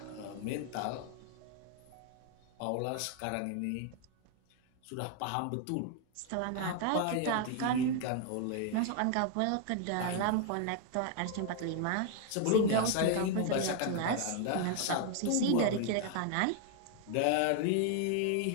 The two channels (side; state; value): both; different; correlation 0.00